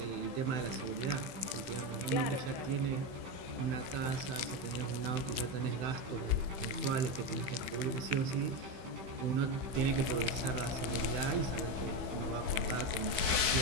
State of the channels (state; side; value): late; left; 15 ms